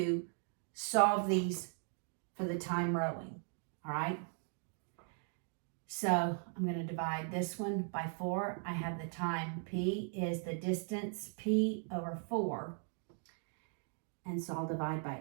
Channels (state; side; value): silent; left; 52 dB below the other